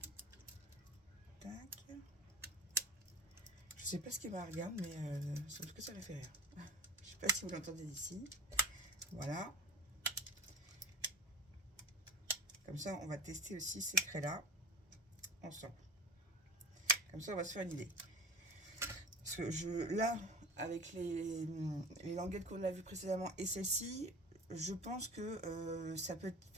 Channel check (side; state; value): both; normal; correlation 0.36